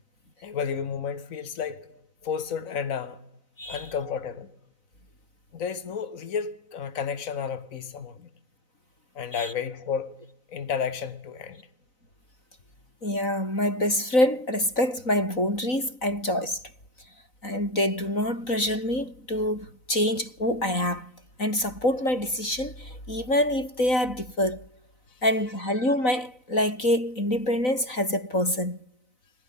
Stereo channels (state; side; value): late; right; 4.0 ms